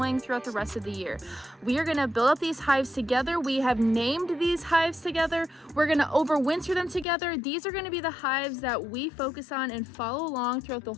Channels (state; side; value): drops out; right; at 7.1 s